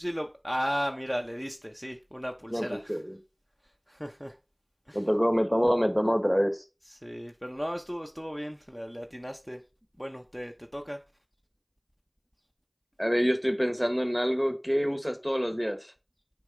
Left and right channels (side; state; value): both; identical; correlation 1.00